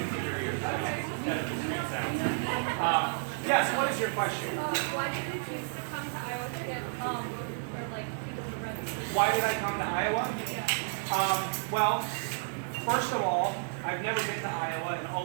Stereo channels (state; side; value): silent; left; 57 dB below the other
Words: in your ears. Instead of the street sound. Yes, what is your question? Why did you choose to come to Iowa to get or like people to register? Why did I come to Iowa? Yeah. Well, first of all, I've never been to Iowa and